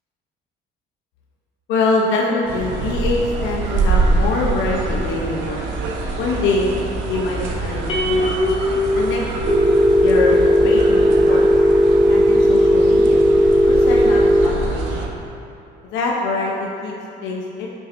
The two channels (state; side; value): normal; both; correlation 0.78